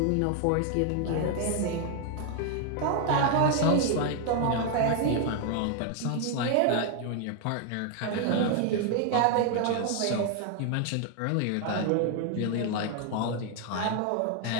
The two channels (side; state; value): both; different; correlation 0.00